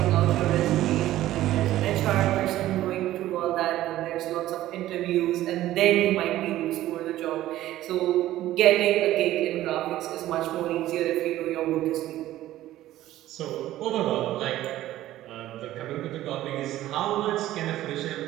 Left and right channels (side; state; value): left; quieter; 14.5 dB